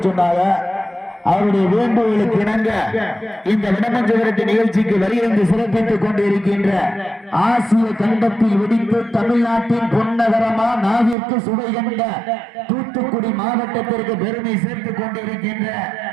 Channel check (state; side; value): drops out; left; at 11.2 s